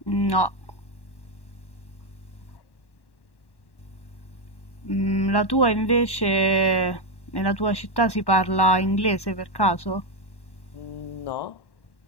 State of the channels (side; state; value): right; late; 1.1 ms